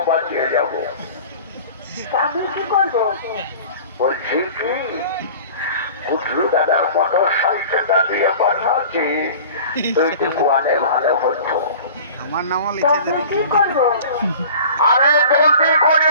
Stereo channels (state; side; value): inverted; both; correlation -0.42